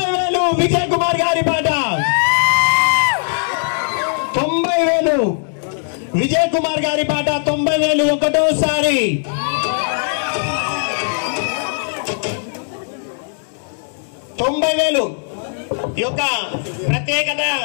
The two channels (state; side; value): silent; right; 67 dB below the other